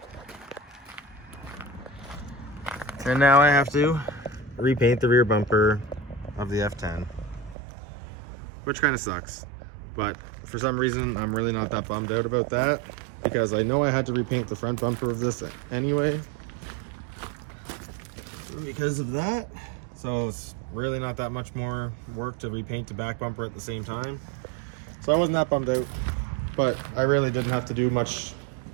And now I have to repaint the rear bumper of the F10, which kind of sucks. But for some reason, I'm really not that bummed out about that because I know I had to repaint the front bumper of this anyway because of that. So it's really not that much more work to repaint the back bumper at the same time. So I wasn't that bummed out, but I really didn't have to do much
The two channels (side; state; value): left; drops out; at 7.6 s